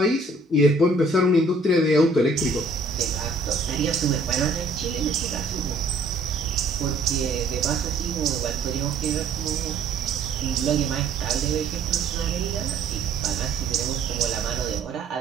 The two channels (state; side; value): quieter; left; 3.1 dB